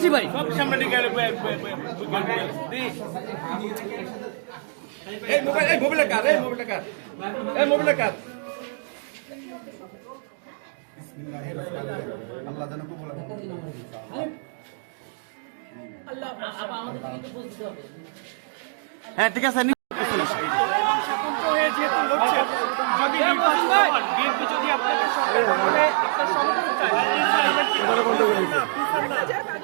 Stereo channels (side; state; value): left; silent; digital silence